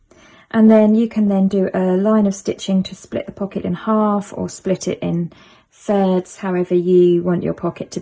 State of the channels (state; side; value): identical; both; correlation 1.00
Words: And then you can then do a line of stitching to split the pocket in half or split it in thirds, however you want your pocket to